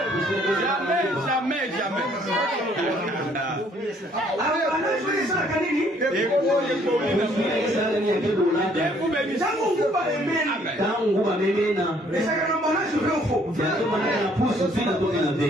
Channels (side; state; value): both; normal; correlation 0.63